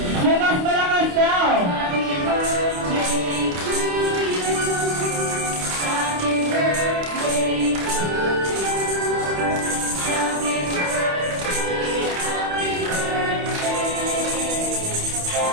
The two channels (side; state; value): left; late; 28 ms